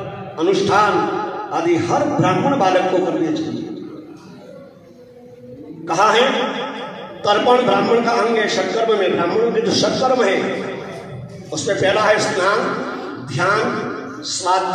अनुष्ठान आदि हर ब्राह्मण बालक को करने चाहिए। कहा है तर्पण ब्राह्मण का अंग है। षटकर्म में ब्राह्मणों के जो षटकर्म है उसमें पहला है स्नान, ध्यान,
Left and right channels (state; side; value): identical; both; correlation 1.00